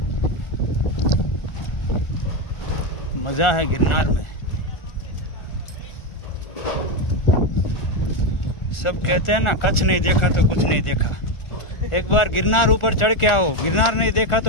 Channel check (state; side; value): late; right; 1.4 ms